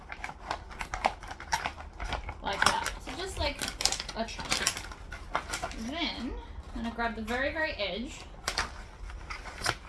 Like that. So just like a chunk. Then I'm going to grab the very, very edge.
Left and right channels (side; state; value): both; identical; correlation 1.00